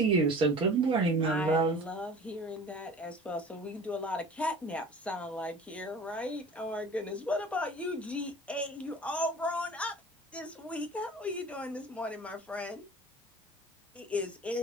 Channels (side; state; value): both; normal; correlation 0.42